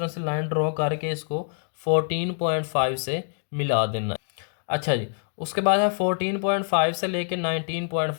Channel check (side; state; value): right; silent; digital silence